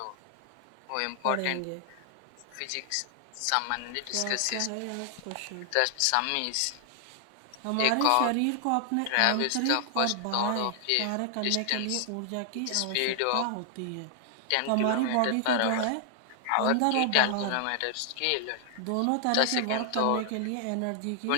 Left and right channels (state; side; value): different; both; correlation 0.00